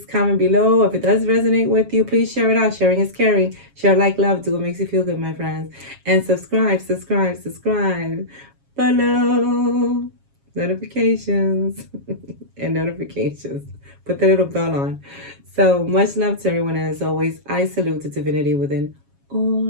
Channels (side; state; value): left; late; 7.3 ms